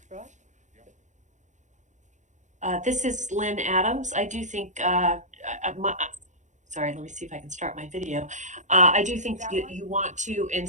This is Lynn Adams. I do think, sorry, let me see if I can start my video. I do think you want to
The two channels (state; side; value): late; left; 0.35 ms